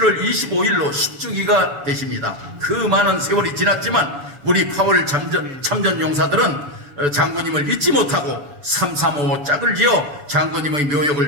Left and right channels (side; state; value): left; late; 6.9 ms